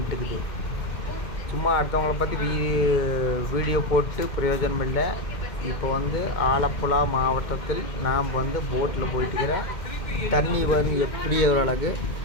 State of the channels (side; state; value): right; late; 2.1 ms